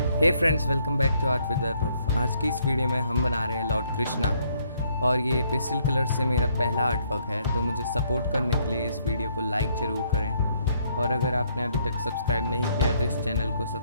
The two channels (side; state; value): both; inverted; correlation -0.69